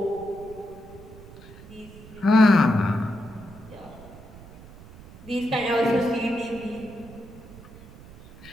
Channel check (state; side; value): noise; right; rumble, 18 dB below the sound